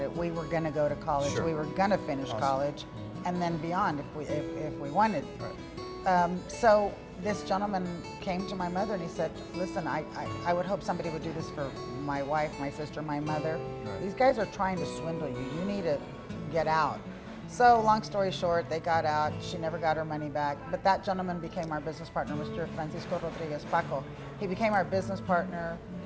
it, we were going to go to college, Sure. we were going to finish college, and then beyond if we wanted. So this gentleman came to my mother and he said, "Listen, I would hope somebody would do this for my wife, my sister, my mother. These guys are trying to swindle you. You need to get out." So long story short, they got out. She never got her money back. But that gentleman became our business partner, Mr. Francisco Rodriguez Paco. He became our business partner,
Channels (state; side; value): identical; both; correlation 1.00